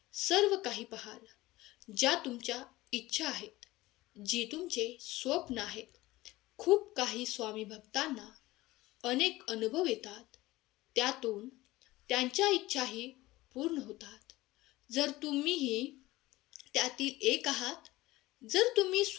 सर्व काही पाहाल, ज्या तुमच्या इच्छा आहेत, जी तुमचे स्वप्न आहेत. खूप काही स्वामी भक्तांना अनेक अनुभव येतात, त्यातून त्यांच्या इच्छाही पूर्ण होतात. जर तुम्हीही त्यातील एक आहात, जर तुम्ही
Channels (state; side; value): quieter; right; 18.6 dB